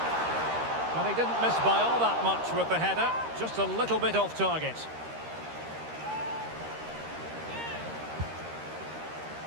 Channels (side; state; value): left; late; 13 ms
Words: Well, he didn't miss by all that much with the header. Just a little bit off target.